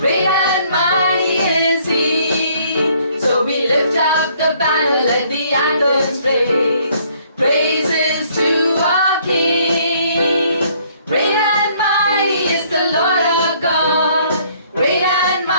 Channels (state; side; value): inverted; both; correlation -0.63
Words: and mighty is He. So we lift up the banner, let the anthems raise. Praises to our King. Great and mighty is the Lord our God. Great and